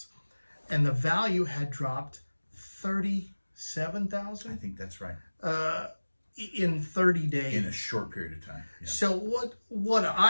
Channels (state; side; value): inverted; both; correlation -1.00